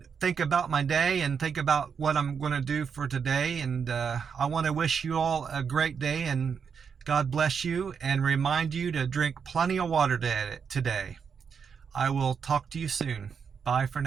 think about my day and think about what I'm gonna do for today. And I want to wish you all a great day, and God bless you, and remind you to drink plenty of water today. I will talk to you soon. Bye for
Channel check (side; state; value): left; quieter; 6.5 dB